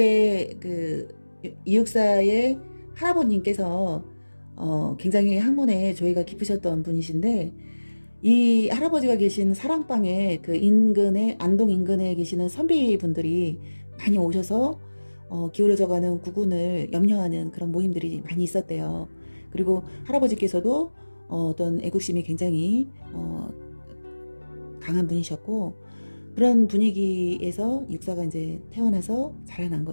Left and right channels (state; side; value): inverted; both; correlation -1.00